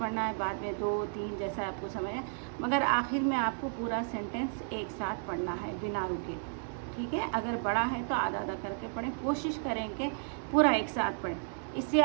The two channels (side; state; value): left; silent; 56 dB below the other